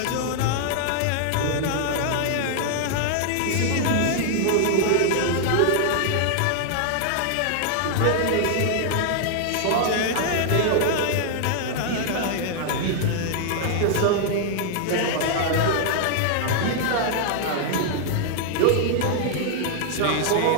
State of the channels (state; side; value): different; both; correlation -0.01